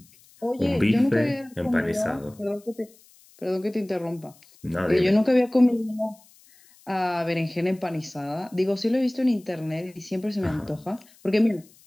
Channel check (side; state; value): left; noise; hiss, 28 dB below the sound